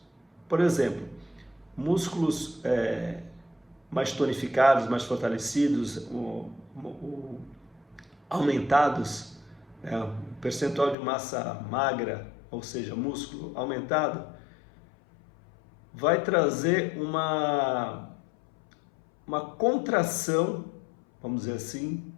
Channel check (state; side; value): drops out; right; at 11.0 s